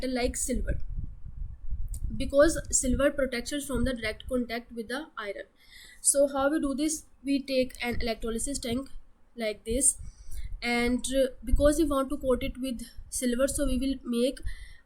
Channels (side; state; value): both; identical; correlation 1.00